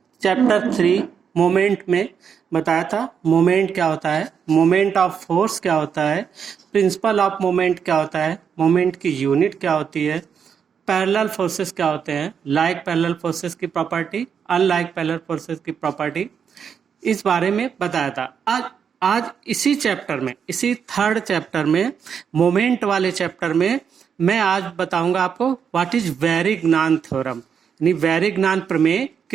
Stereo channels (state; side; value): quieter; left; 7.2 dB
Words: चैप्टर 3 मोमेंट में बताया था। मोमेंट क्या होता है, मोमेंट ऑफ फोर्स क्या होता है, प्रिंसिपल ऑफ मोमेंट क्या होता है, मोमेंट की यूनिट क्या होती है, पैरेलल फोर्सेस क्या होते हैं, लाइक पैरेलल फोर्सेस की प्रॉपर्टी, अनलाइक पैरेलल फोर्सेस की प्रॉपर्टी, इस बारे में बताया था। आज इसी चैप्टर में, इसी थर्ड चैप्टर में, मोमेंट वाले चैप्टर में मैं आज बताऊंगा आपको व्हाट इज वैरिग्नान थ्योरम, यानी वैरिग्नान प्रमेय